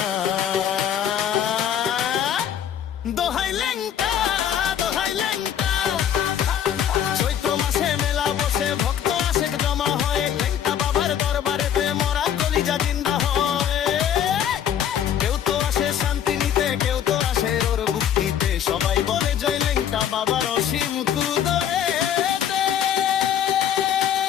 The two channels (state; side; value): quieter; right; 9.5 dB